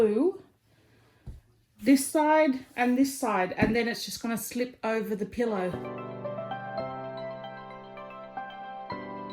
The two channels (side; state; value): both; identical; correlation 1.00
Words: this side, and then it's just going to slip over the pillow.